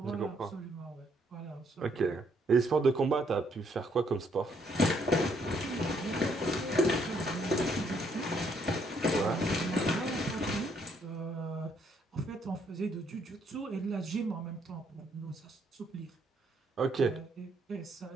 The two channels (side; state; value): both; normal; correlation 0.70